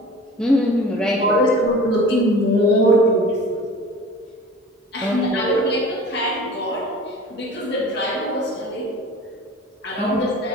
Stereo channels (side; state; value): both; normal; correlation 0.41